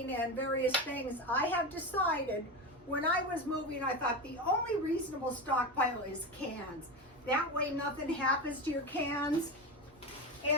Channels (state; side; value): normal; both; correlation 0.20